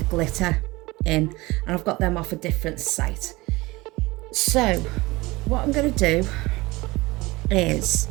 glitter in, and I've got them off a different site. So what I'm going to do is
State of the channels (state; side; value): quieter; left; 21.6 dB